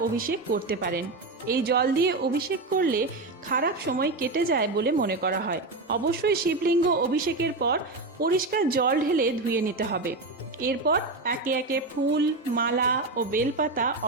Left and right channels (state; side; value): quieter; left; 3.3 dB